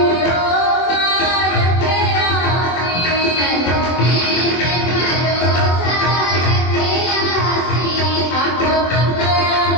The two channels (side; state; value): right; late; 24 ms